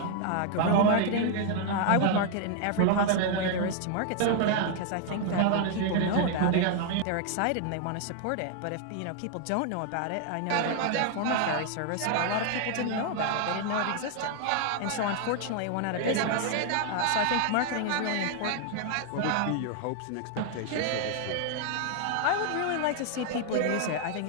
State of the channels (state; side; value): different; both; correlation 0.00